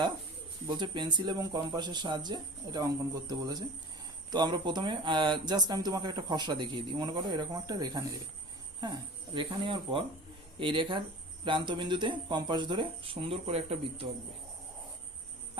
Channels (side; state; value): right; noise; rumble, 28 dB below the sound